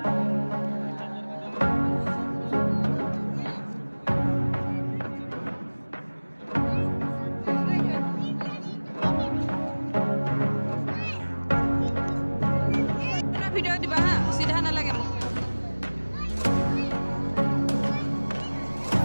ভিডিও দিবা হা সিধা নালাগে মোক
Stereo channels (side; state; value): both; inverted; correlation -1.00